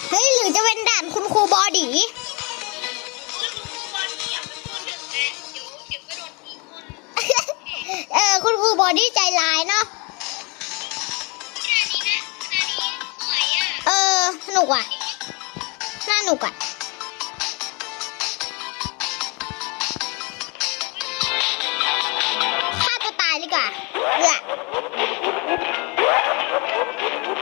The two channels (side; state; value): right; quieter; 30.2 dB